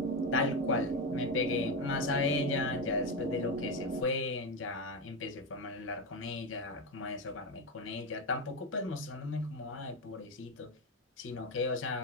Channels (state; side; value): normal; both; correlation 0.13